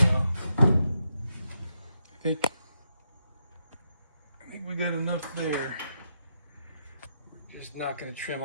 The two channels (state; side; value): inverted; both; correlation -0.82